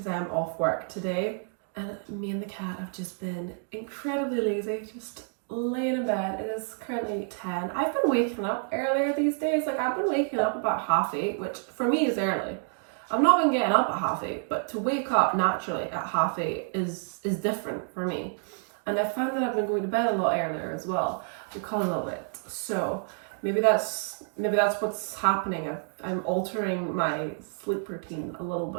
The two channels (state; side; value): silent; left; 57 dB below the other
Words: I am off work today, and me and the cat have just been incredibly lazy, just laying in bed. It is currently 10. I've been waking up earlier these days. Like, I've been waking up about 8:30, which for me is early. I've not been getting up at 8:30, but to wake up naturally at 8:30 is different for me. And I found that I've been going to bed a lot earlier as well because of it. So maybe that's what's happening. I'm altering my sleep routine a little